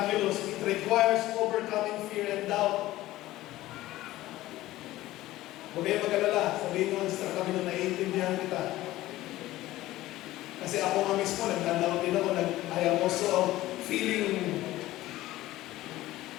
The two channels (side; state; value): right; quieter; 16.3 dB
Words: It requires overcoming fear and doubt. Huwag kayo mag-alala, sabihin nyo sa kami na naiintindihan kita. Kasi ako nga mismo, nagdalaw din ako, I am also feeling,